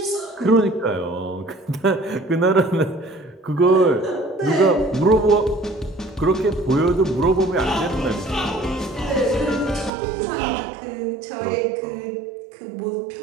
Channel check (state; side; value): drops out; left; at 9.9 s